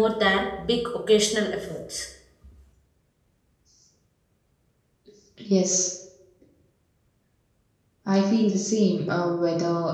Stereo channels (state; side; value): identical; both; correlation 1.00